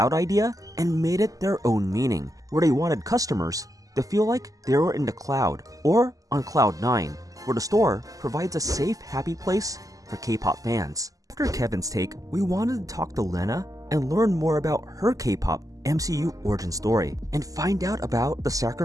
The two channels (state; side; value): late; left; 0.17 ms